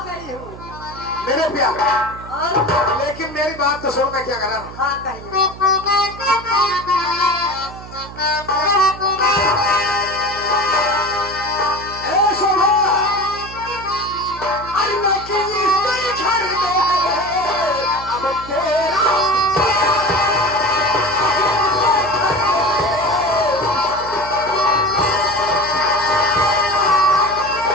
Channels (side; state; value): right; noise; hum, 15 dB below the sound